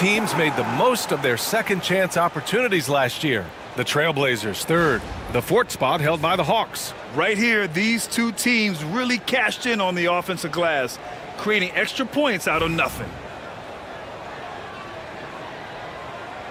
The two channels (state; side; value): identical; both; correlation 1.00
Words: made the most of their second chance opportunities last year. The Trailblazers third, the fourth spot held by the Hawks. Right here, these two teams really cashed in on the offensive glass, creating extra points out of nothing.